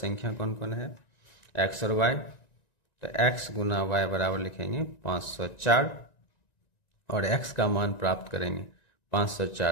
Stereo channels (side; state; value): right; late; 1.9 ms